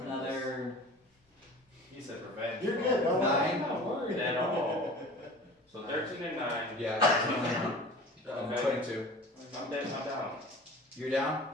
You said revenge. You're good, don't worry. 9. I'm not worried at all. So 13 and 9. Yeah, 22. I'm dead. I'm down. You're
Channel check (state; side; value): normal; both; correlation 0.40